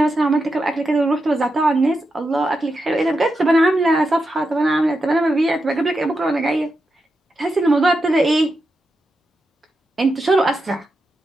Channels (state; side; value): normal; both; correlation 0.87